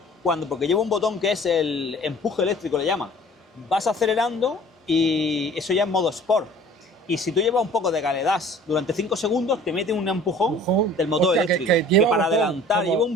porque lleva un botón que es el empuje eléctrico, le llaman. Vas acelerando y eso ya es modo Sport. Y si tú llevas un poco de galedas durante 5 segundos, te mete un empujón del motor Hostia, eléctrico. que Que, lleva para botón, adelantar, como- lleva un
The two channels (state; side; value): normal; both; correlation 0.49